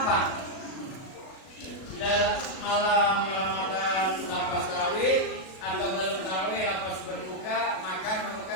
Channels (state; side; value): late; right; 37 ms